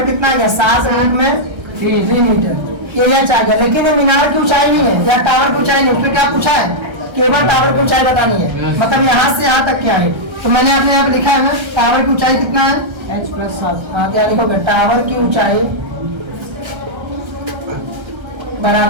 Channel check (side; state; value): left; late; 1.3 ms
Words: कितना आ गया 7 यूनिट में 3 मीटर। ये h आ गया। लेकिन ये मीनार की ऊंचाई नहीं है या टावर की ऊंचाई नहीं, उसमें क्या पूछा है केवल टावर की ऊंचाई बतानी है, मतलब यहाँ से यहाँ तक क्या है। तो मैंने अपने यहाँ पे लिखा है ना टावर की ऊंचाई कितना है h प्लस 7। हाँ क्या लिखोगे टावर की ऊंचाई